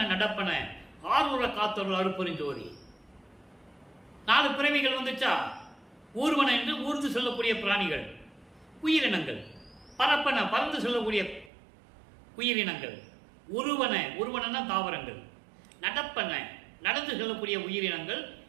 நடப்பன ஆரூர காத்தொரு அருப்பெருஞ்சோதி. 4 பிறவிகள் வந்துச்சா? ஊர்வன என்று ஊர்ந்து செல்லக்கூடிய பிராணிகள், உயிரினங்கள். பரப்பன பறந்து செல்லக்கூடிய உயிரினங்கள். உருவன தாவரங்கள். நடப்பன நடந்து செல்லக்கூடிய உயிரினங்கள்.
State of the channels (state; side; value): drops out; left; at 11.5 s